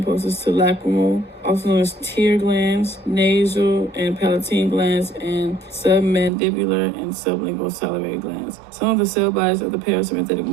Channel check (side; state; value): left; drops out; at 6.3 s